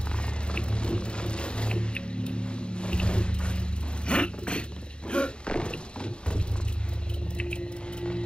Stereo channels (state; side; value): late; right; 0.053 ms